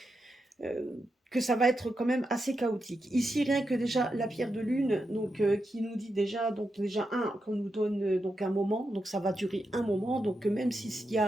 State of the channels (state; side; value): normal; both; correlation 0.86